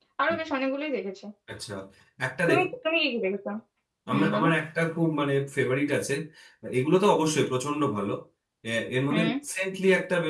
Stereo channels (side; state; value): both; identical; correlation 1.00